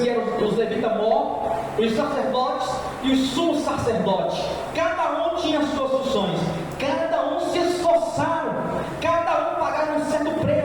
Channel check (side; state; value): both; identical; correlation 1.00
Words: eram os levitas mortos, os sacerdotes e os sumos sacerdotes. Cada um tinha as suas funções, cada um se esforçaram, cada um pagava um certo